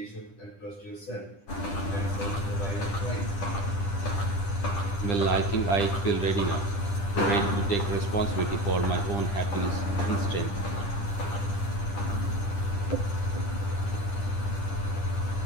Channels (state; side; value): late; right; 10 ms